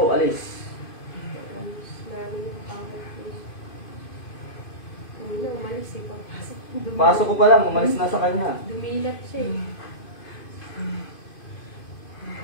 alis. Alis namin yung pangit ko. Hindi na umalis eh. Pagpasok. Pasok ko pa lang, umalis na sa kanya. Dumilat siya eh.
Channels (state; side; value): late; right; 2.5 ms